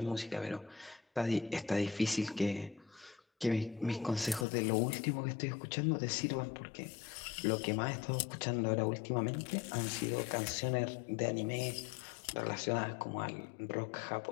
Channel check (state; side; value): drops out; right; at 4.5 s